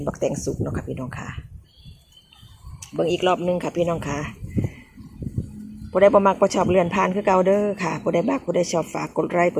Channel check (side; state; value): both; identical; correlation 1.00